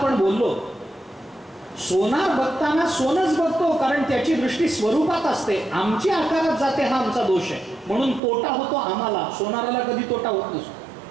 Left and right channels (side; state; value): left; drops out; at 8.2 s